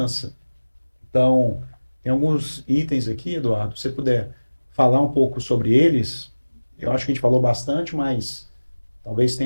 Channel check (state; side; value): inverted; both; correlation -1.00